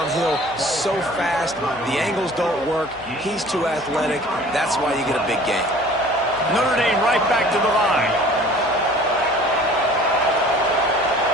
so fast. The angles don't work. He's too athletic. That's why you get a big gain. Notre Dame right back to the line.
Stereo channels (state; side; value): noise; right; hum, 23 dB below the sound